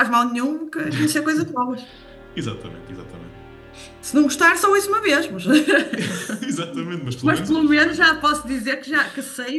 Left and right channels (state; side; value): identical; both; correlation 1.00